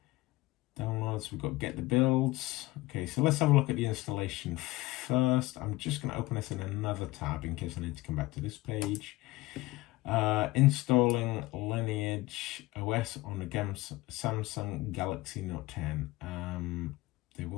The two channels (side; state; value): right; quieter; 19.4 dB